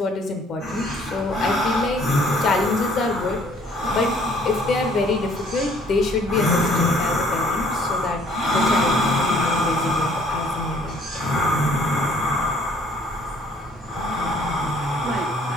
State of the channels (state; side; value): normal; both; correlation 0.59